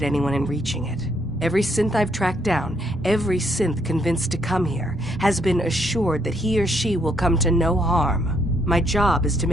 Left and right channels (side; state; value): both; normal; correlation 0.71